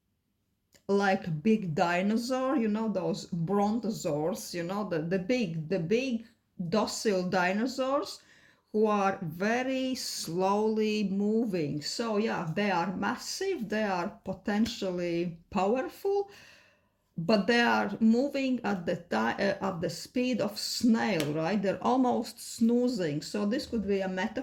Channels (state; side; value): identical; both; correlation 1.00